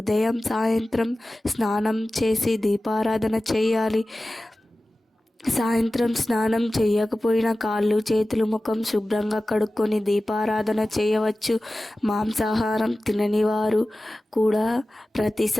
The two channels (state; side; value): normal; both; correlation 0.96